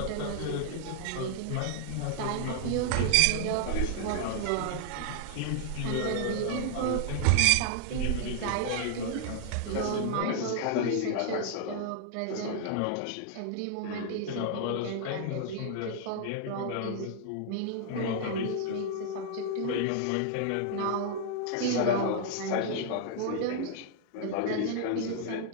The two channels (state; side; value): different; both; correlation 0.00